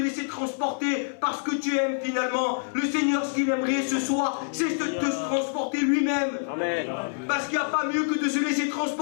transporter par ce que tu aimes finalement. Le Seigneur, ce qu'il aimerait ce soir, c'est de te transporter lui-même. Parce qu'il n'y a pas mieux que de se laisser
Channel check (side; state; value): right; silent; 60 dB below the other